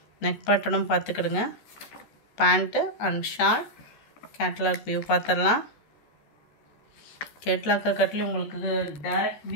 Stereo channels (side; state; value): right; late; 13 ms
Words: நெக் பேட்டர்னும் பார்த்துக்கிடுங்க. Pant and short. Catalogue view பார்த்துடலாம். கேட்லாக்கை கட்டிலும் உங்களுக்கு டைரக்ட்